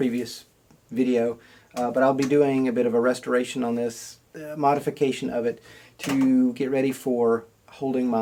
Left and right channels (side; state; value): both; identical; correlation 1.00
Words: video, but I'll be doing a bit of a restoration on this, modification of it to get ready for holding